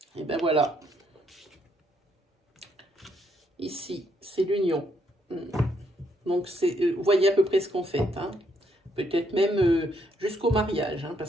Et ben voilà. Ici, c'est l'union. Donc, vous voyez à peu près ce qu'on fait. Hein. Peut-être même jusqu'au mariage. Hein,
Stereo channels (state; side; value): normal; both; correlation 0.73